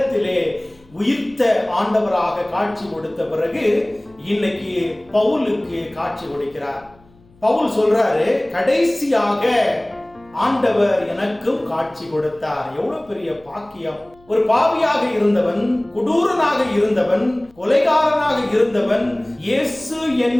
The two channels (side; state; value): left; noise; hum, 30 dB below the sound